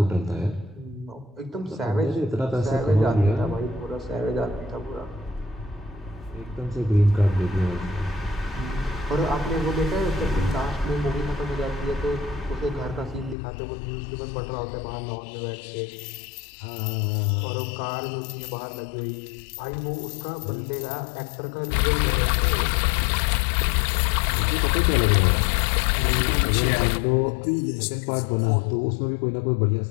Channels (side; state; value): right; drops out; at 13.4 s